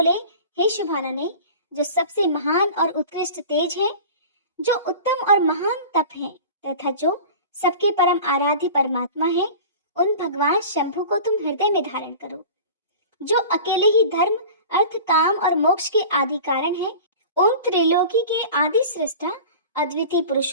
हे शुभानने, जो सबसे महान और उत्कृष्ट तेज है, जो उत्तम और महान तप है तथा जो सबके परम आराध्य परमात्मा है, उन भगवान शंभु को तुम हृदय में धारण करो। जो अकेले ही धर्म, अर्थ, काम और मोक्ष के आदि कारण है, उन त्रिलोकी के आदि सृष्टा अद्वितीय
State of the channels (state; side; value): inverted; both; correlation -0.37